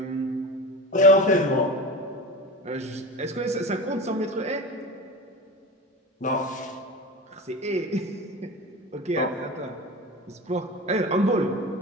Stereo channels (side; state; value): both; normal; correlation 0.30